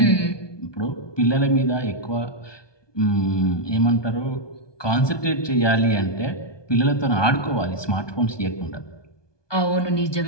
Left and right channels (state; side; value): late; right; 1.2 ms